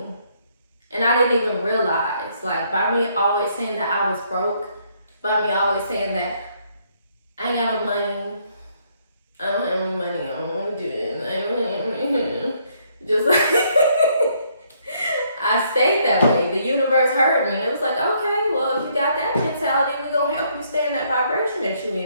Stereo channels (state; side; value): inverted; both; correlation -0.69